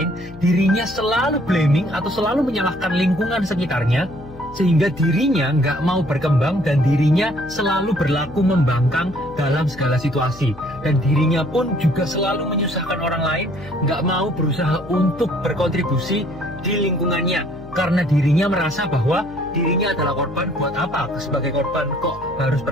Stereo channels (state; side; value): noise; left; hum, 18 dB below the sound